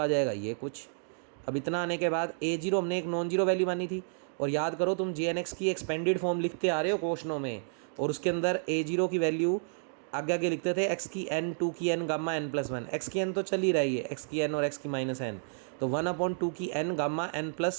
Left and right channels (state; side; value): silent; left; digital silence